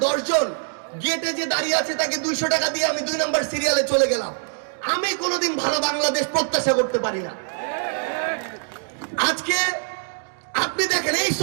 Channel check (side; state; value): left; silent; digital silence